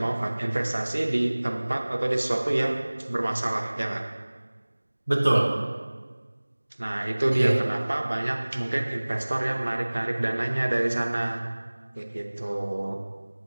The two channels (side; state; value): both; inverted; correlation -1.00